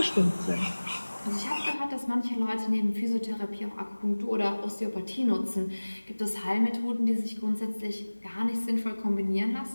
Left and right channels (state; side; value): inverted; both; correlation -1.00